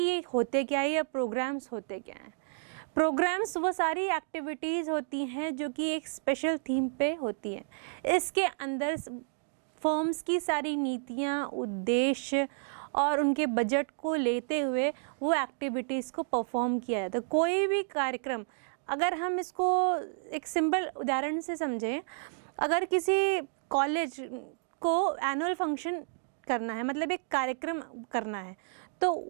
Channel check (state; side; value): silent; left; digital silence